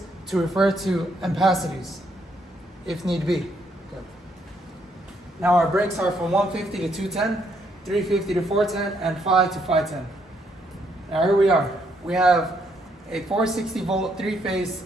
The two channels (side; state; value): both; normal; correlation 0.73